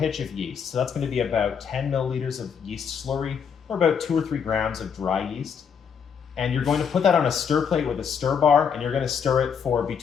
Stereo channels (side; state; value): right; quieter; 7.0 dB